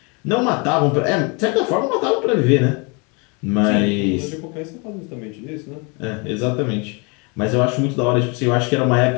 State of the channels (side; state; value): right; quieter; 31.6 dB